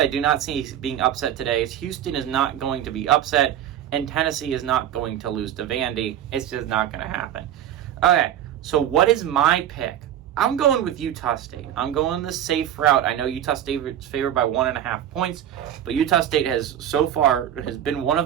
do not see being upset today is Houston is not going to be upset, and Tennessee is not going to lose to Vandy. It's just not going to happen. Okay, so what is my pick? I'm going with Utah State. I'm going the safe route. I know Utah State is favored by 1.5 points, but Utah State has been one of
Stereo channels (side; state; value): left; quieter; 10.9 dB